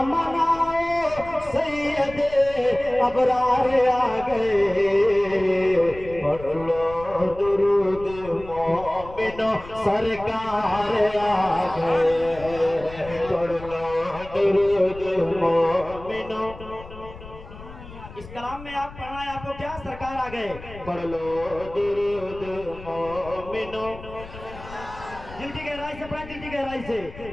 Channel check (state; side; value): noise; left; rumble, 16 dB below the sound